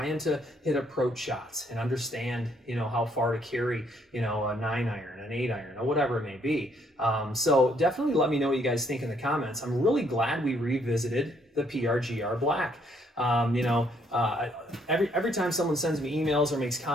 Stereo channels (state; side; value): normal; both; correlation 0.69